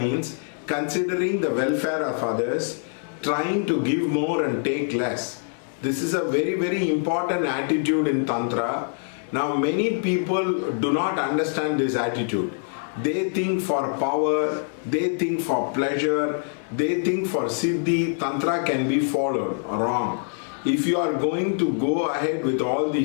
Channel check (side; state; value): right; silent; digital silence